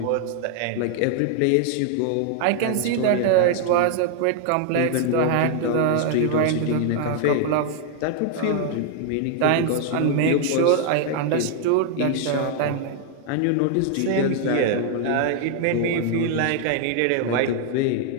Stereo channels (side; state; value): both; different; correlation 0.00